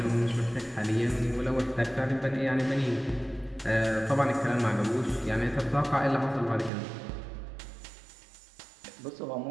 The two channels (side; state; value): left; drops out; at 6.7 s